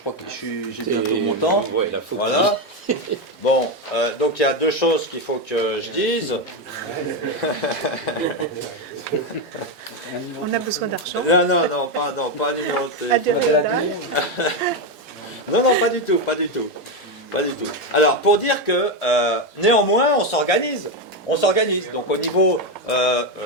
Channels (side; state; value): both; normal; correlation 0.08